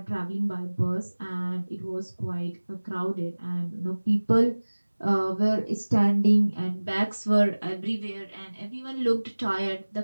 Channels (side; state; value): both; inverted; correlation -1.00